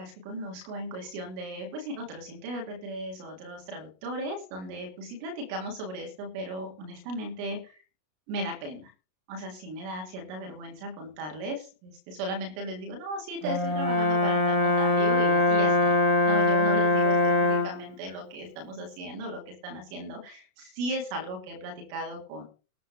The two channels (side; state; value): left; late; 33 ms